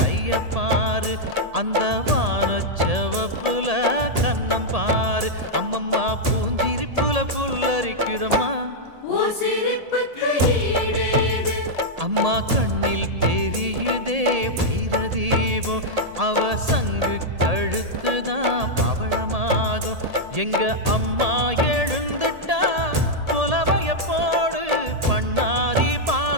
பாரு, அந்த வானச்சவப்புல கண்ணம் பாரு. அம்மம்மா பூஞ்சிரிப்புல புல்லரிக்குதம்மா, அம்மா கண்ணில் தெரியுதே வைரதீபம், அவ சங்கு கழுத்துதான் பவளமாகும். எங்க அம்மா எழுந்துட்டா குலவைய போடு, பண்ணாரி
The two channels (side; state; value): left; late; 1.8 ms